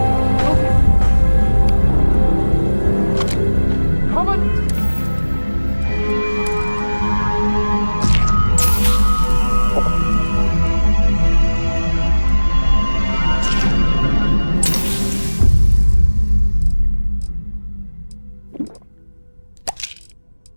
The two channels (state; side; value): inverted; both; correlation -1.00